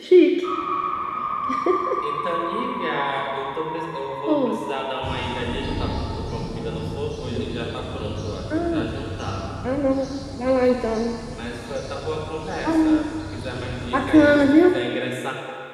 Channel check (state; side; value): identical; both; correlation 1.00